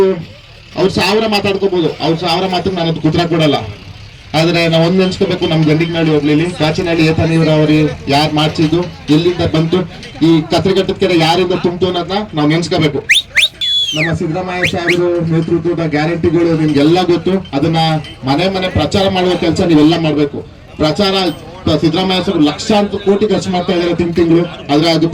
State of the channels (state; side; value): identical; both; correlation 1.00